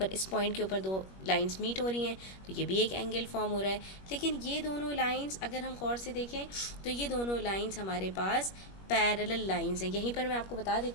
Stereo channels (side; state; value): right; late; 21 ms